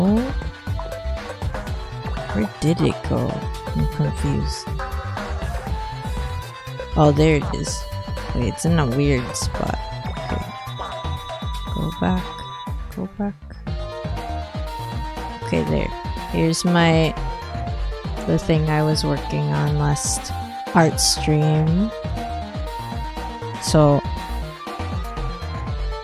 Where did it go? I'm confused. Oh, there it is. Wait, it's in a weird spot. Okay. Go back. Go back. Okay, there. Here's the thing I was working on last art stream. So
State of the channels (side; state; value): both; identical; correlation 1.00